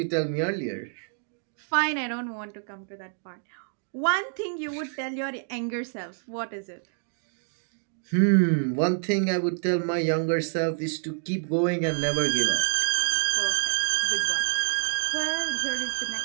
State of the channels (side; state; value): left; silent; 60 dB below the other